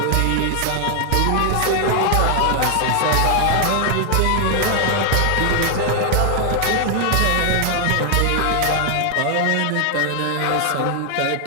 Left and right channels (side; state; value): both; different; correlation 0.00